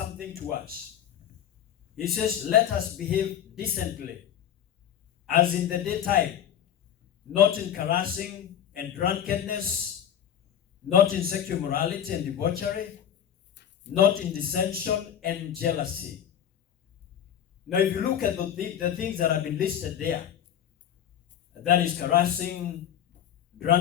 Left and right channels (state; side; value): quieter; right; 9.9 dB